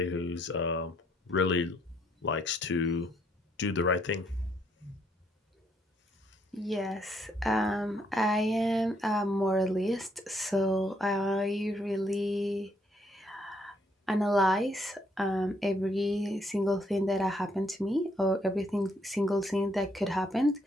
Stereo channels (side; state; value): both; normal; correlation 0.70